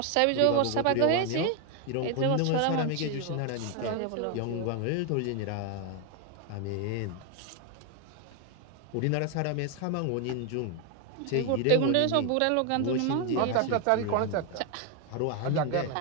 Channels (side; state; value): both; different; correlation 0.01